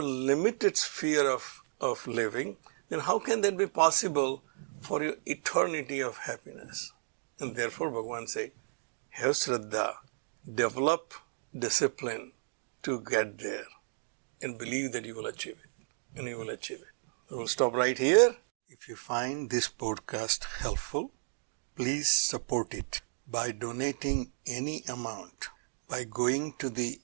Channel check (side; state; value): left; silent; digital silence